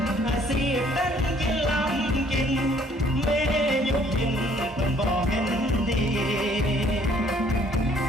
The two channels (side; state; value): both; normal; correlation 0.60